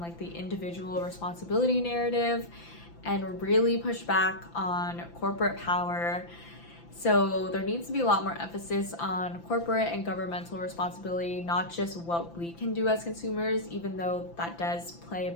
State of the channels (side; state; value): right; late; 5.9 ms